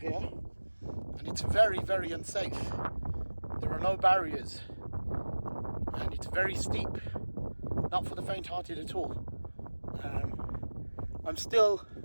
and it's very, very unsafe. There are no barriers, and it's very steep. Not for the faint-hearted at all.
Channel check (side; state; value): both; inverted; correlation -1.00